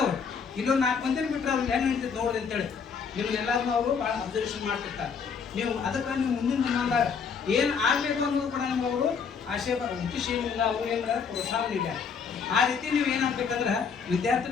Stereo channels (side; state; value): right; quieter; 6.1 dB